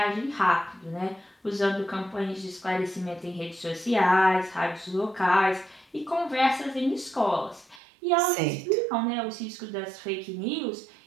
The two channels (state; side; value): drops out; left; at 7.8 s